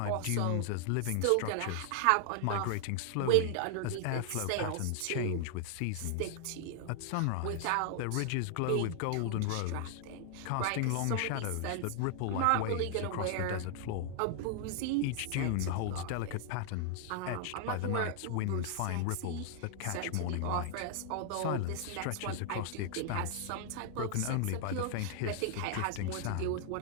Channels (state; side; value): different; both; correlation 0.00